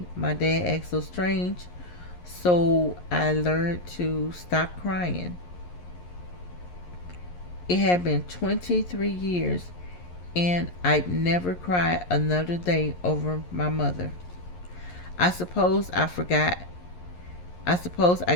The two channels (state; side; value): late; right; 11 ms